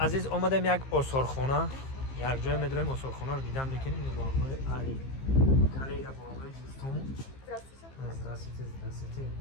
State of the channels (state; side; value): late; right; 15 ms